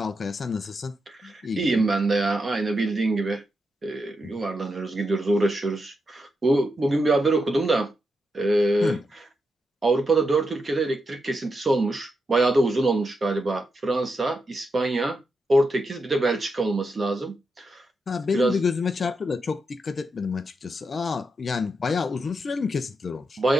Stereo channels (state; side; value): normal; both; correlation 0.84